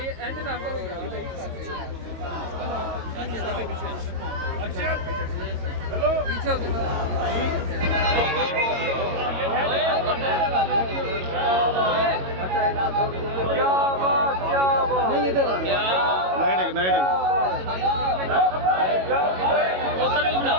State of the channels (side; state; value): left; late; 22 ms